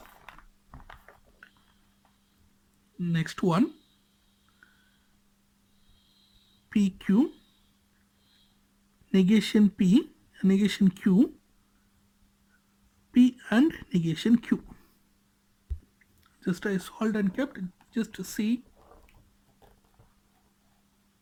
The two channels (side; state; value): both; identical; correlation 1.00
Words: Next one, PQ, negation P, negation Q, P and negation Q. Just I solved and kept, just to see.